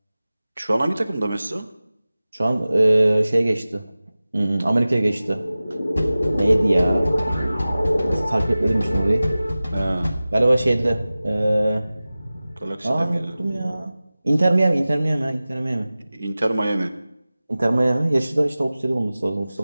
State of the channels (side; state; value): both; inverted; correlation -0.97